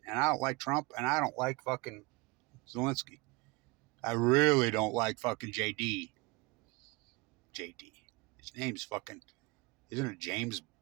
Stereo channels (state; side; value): quieter; left; 25.3 dB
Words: And I don't like Trump, and I don't like fucking Zelenskyy. I really don't like fucking JD. His name's fucking, isn't it James